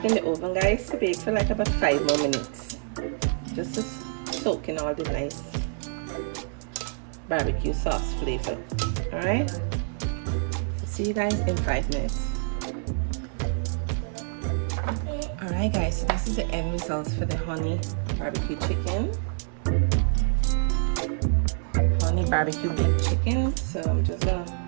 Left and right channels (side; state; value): left; silent; 59 dB below the other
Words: in the oven, guys, to bake for like about 5 more minutes. Just to soak in all the nice barbecue sauce flavor. Alright? See you guys in 5 minutes. Alright guys, so this is the end result for the honey barbecue chicken. Honey barbecue baked chicken. So I'm just gonna